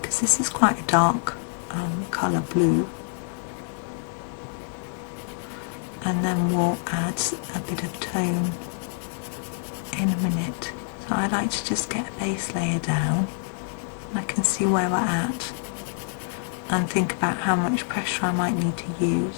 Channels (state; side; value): silent; right; 61 dB below the other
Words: this is quite a dark colour blue. And then we'll add a bit of tone in a minute. So I like to just get a base layer down, and I can see where we're at and think about how much pressure I might need to